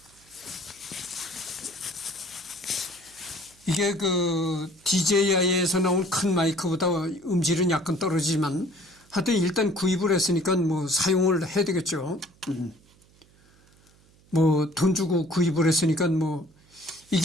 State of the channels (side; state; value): right; noise; hum, 30 dB below the sound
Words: 이게 그 DJI에서 나온 큰 마이크보다 음질은 약간 떨어지지만 하여튼 일단 구입을 했으니까 뭐 사용을 해야 되겠죠. 뭐 돈 주고 구입을 했으니까 뭐